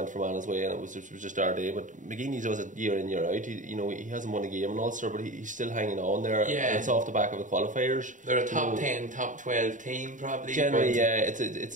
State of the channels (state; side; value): late; left; 0.37 ms